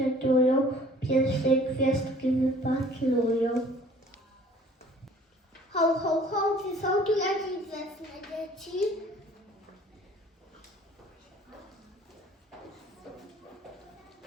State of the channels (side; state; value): both; normal; correlation 0.52